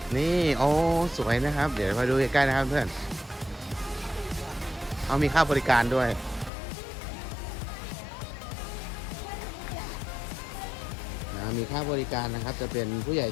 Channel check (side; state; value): right; drops out; at 6.5 s